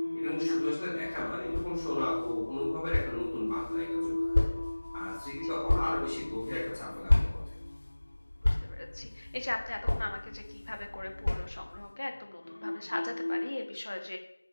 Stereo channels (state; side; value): inverted; both; correlation -1.00